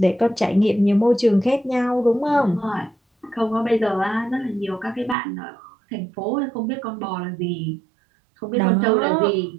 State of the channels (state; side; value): drops out; left; at 5.2 s